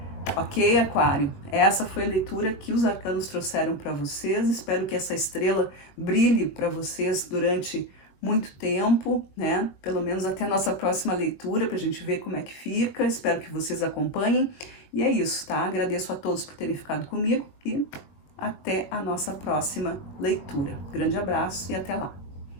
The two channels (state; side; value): late; right; 21 ms